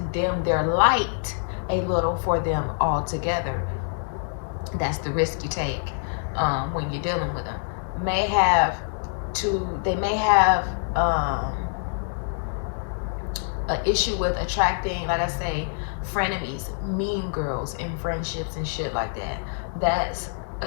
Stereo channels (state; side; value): silent; right; digital silence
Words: dim their light a little for them altogether. That's the risk you take when you're dealing with them. They may have an issue with attracting, like I say, frenemies, mean girls in friendships and shit like that. That's